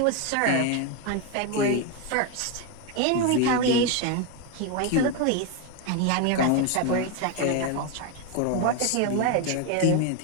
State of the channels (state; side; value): different; both; correlation 0.02